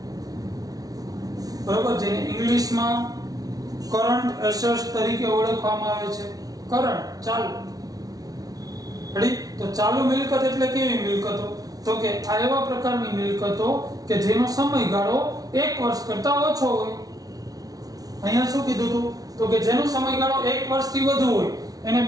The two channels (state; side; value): late; left; 0.18 ms